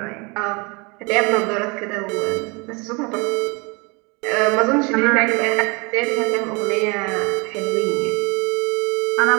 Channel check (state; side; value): quieter; left; 29.3 dB